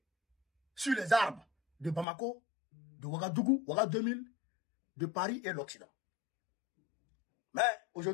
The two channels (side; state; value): right; drops out; at 2.1 s